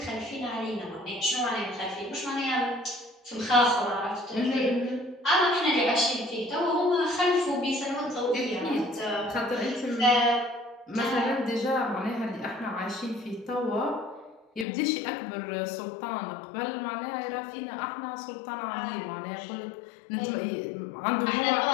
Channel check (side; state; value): right; drops out; at 14.7 s